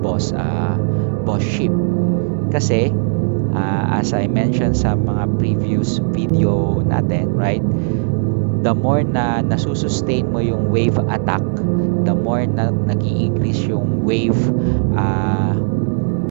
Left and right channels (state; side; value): silent; left; 65 dB below the other